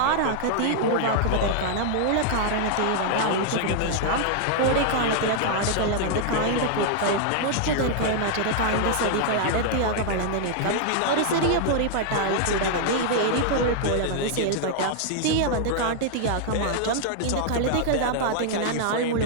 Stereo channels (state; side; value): different; both; correlation -0.01